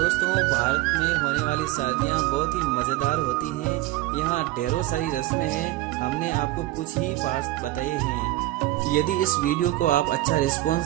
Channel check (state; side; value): quieter; left; 16.8 dB